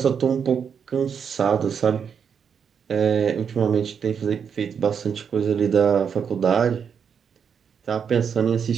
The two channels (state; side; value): quieter; left; 7.1 dB